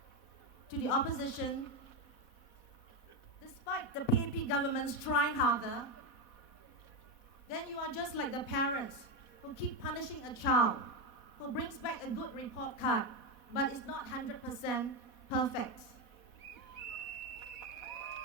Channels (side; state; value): right; late; 4.1 ms